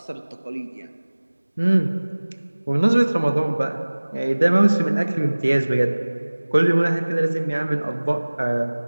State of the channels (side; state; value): both; inverted; correlation -1.00